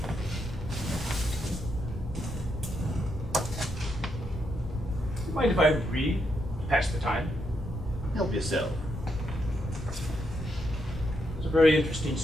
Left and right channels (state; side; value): normal; both; correlation 0.80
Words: You mind if I read? Pass the time. Help yourself. It's a very interesting